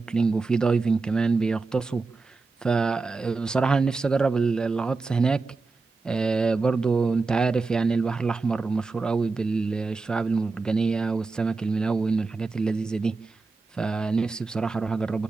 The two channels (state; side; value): quieter; left; 4.0 dB